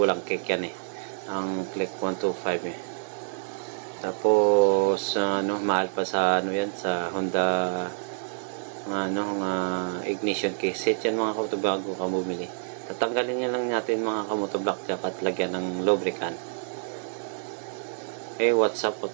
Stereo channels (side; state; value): left; silent; digital silence